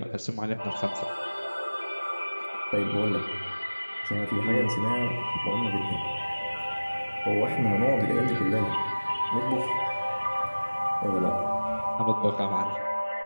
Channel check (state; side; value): inverted; both; correlation -1.00